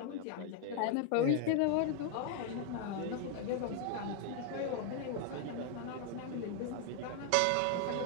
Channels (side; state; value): both; different; correlation 0.00